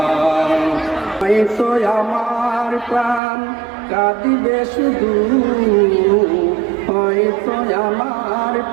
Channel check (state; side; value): drops out; left; at 3.2 s